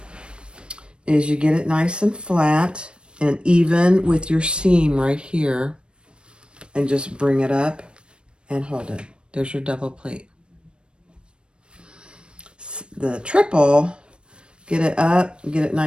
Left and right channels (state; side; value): late; left; 0.055 ms